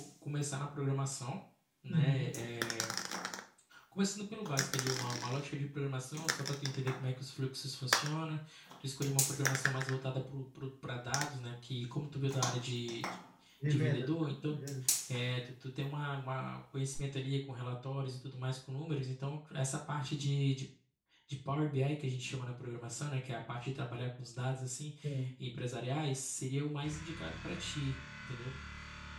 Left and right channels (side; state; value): both; identical; correlation 1.00